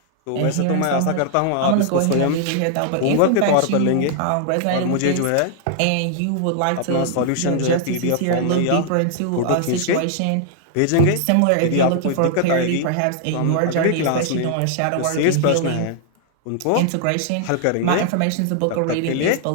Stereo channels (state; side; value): different; both; correlation -0.01